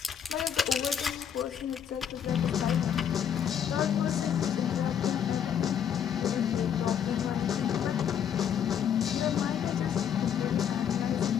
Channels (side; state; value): right; quieter; 8.6 dB